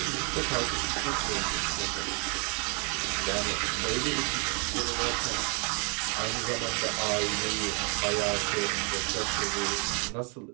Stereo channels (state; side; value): quieter; left; 36.1 dB